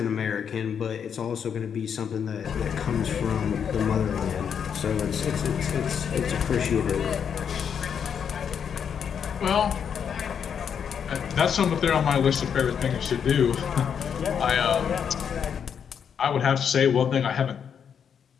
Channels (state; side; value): quieter; right; 7.6 dB